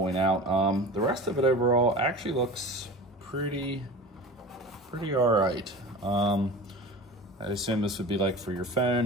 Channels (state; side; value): normal; both; correlation 0.35